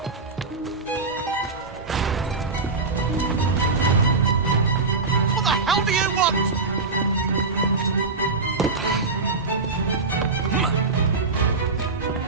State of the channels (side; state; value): left; quieter; 4.0 dB